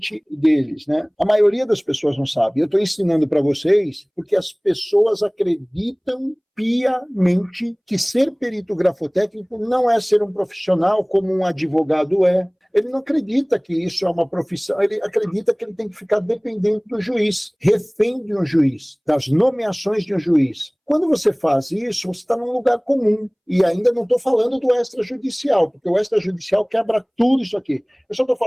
deles, né? A maioria das pessoas não sabe. Eu estou ensinando para vocês porque as pessoas acreditam piamente que ser perito grafotécnico não é ser um profissional como um advogado é. Ele não acredita que isso é uma profissão, ele acredita que ele tem que ficar dependente do juiz, refém de um juiz, das nomeações de um juiz. Quando você faz isso, você está num lugar comum. E ainda não estou falando do extrajudicial, porque o extrajudicial quebra tudo isso aqui. Eu só estou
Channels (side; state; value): both; identical; correlation 1.00